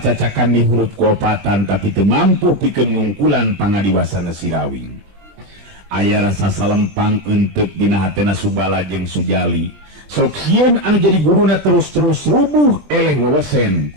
di huruf kuopatan tapi teu mampu pikeun ngungkulan pangadiwasana si Rawing. Aya rasa salempang enteuk dina hatena Subala jeung Sujali. Sok sieun anu jadi guruna terus-terus rubuh eleng wewesen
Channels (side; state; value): left; late; 20 ms